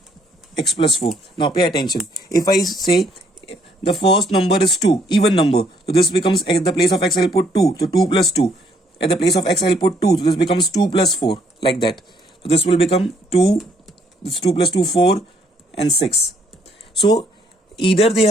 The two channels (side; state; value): both; normal; correlation 0.67